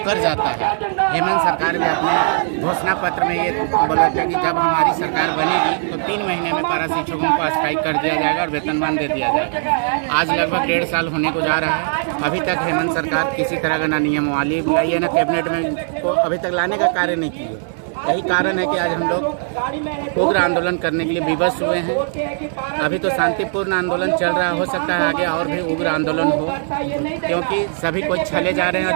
जाता है। हेमंत सरकार भी अपने घोषणा पत्र में ये बोला था कि जब हमारी सरकार बनेगी तो 3 महीने में पारा शिक्षकों को अस्थायी कर दिया जाएगा और वेतनमान दे दिया जाएगा। आज लगभग 1.5 साल होने को जा रहा है, अभी तक हेमंत सरकार किसी तरह का ना नियमावली लाई है, ना कैबिनेट में को अभी तक लाने का कार्य नहीं किया। यही कारण है कि आज हम लोग उग्र आंदोलन करने के लिए विवश हुए हैं। अभी तो शांतिपूर्ण आंदोलन चल रहा है, हो सकता है आगे और भी उग्र आंदोलन हो, क्योंकि सभी कोई छले जा रहे हैं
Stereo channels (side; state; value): left; silent; 66 dB below the other